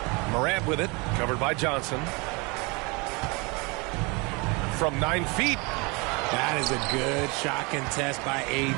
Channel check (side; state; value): left; quieter; 28.5 dB